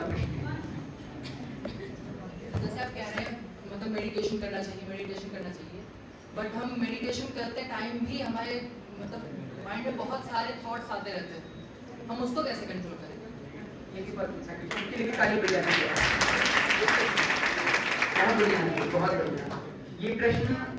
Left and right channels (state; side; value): identical; both; correlation 1.00